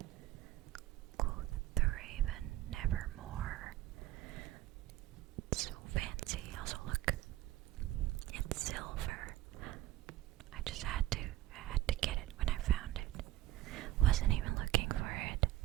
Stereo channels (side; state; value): left; quieter; 15.2 dB